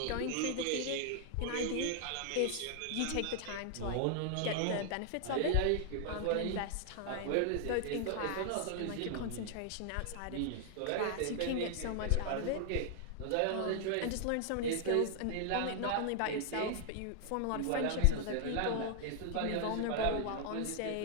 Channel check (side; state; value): both; different; correlation 0.00